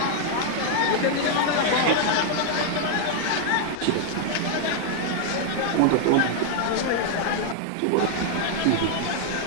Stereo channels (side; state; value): both; different; correlation 0.00